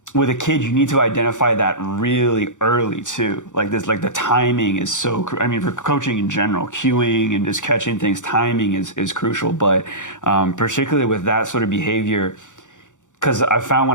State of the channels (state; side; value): late; right; 0.86 ms